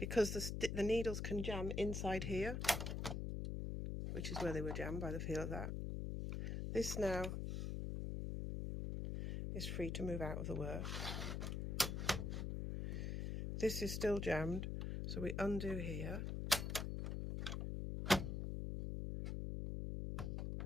the needles can jam inside here, which is where they were jammed by the feel of that. This now is free to move out of the work. This is still jammed, so we undo here.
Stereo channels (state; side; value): noise; left; hum, 2 dB below the sound